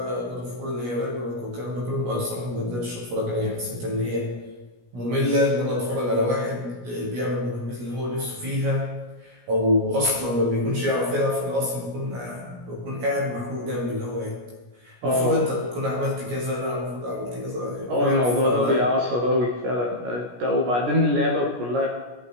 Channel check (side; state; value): left; late; 17 ms